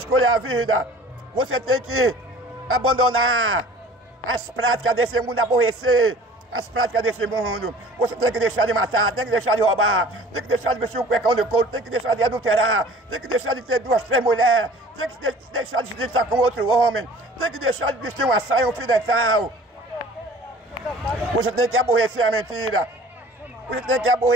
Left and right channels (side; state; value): both; normal; correlation 0.47